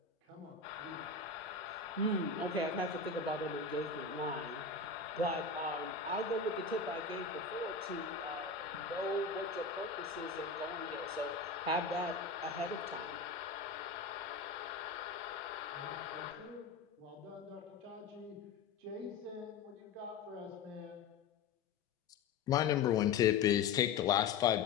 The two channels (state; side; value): quieter; right; 5.4 dB